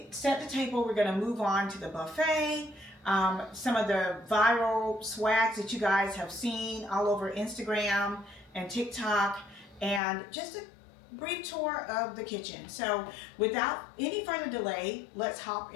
set the table, we're going to move on to the buffet. Some of the viral swags that you guys have seen all over Instagram and TikTok, and just a brief tour of the kitchen. So without any further delay, let's hop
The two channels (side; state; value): right; drops out; at 10.0 s